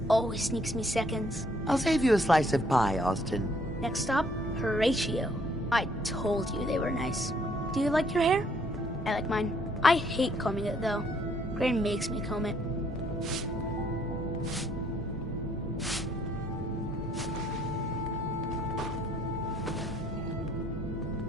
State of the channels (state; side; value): normal; both; correlation 0.66